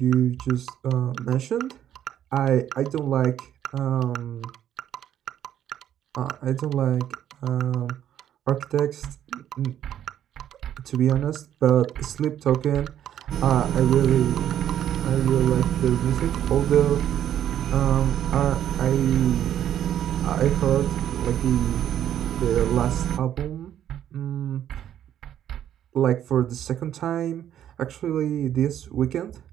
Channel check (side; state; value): left; quieter; 10.7 dB